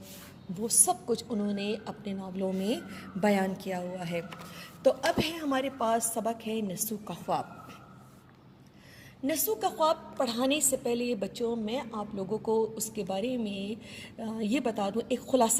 وہ سب کچھ انہوں نے اپنے ناولوں میں بیان کیا ہوا ہے۔ تو اب ہے ہمارے پاس سبق ہے نسو کا خواب۔ نسو کا خواب پڑھانے سے پہلے بچوں میں آپ لوگوں کو اس کے بارے میں یہ بتا دوں، ایک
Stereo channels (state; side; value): identical; both; correlation 1.00